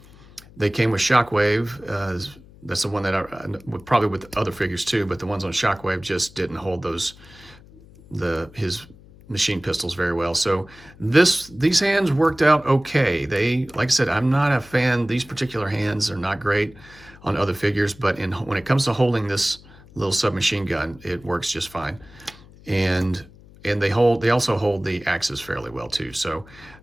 They came with Shockwave. That's the one that probably with other figures too, but the ones on Shockwave just didn't hold his machine pistols very well. So these hands worked out okay. Like I said, I'm not a fan. These particular hands are not great on other figures, but when it comes to holding this little submachine gun, it works just fine. And they also hold the axes fairly well too. So,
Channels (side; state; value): left; noise; hum, 23 dB below the sound